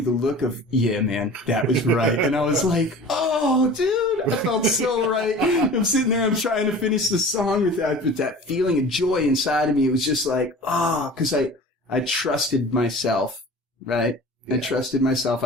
the look of, yeah, man, that was right. And I was like, oh, dude, I felt so right. I'm sitting there, I'm trying to finish the song with that feeling of joy inside of me. It was just like, because I trusted myself, right? I trusted myself.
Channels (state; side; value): normal; both; correlation 0.40